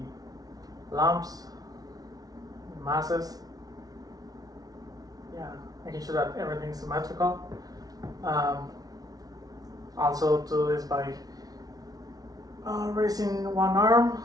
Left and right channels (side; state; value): left; late; 0.18 ms